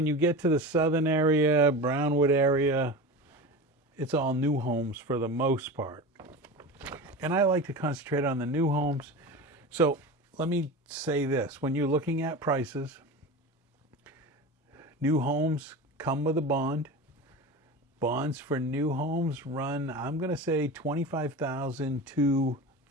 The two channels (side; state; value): both; normal; correlation 0.29